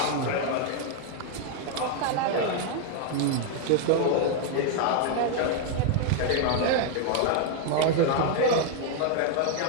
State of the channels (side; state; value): both; different; correlation 0.00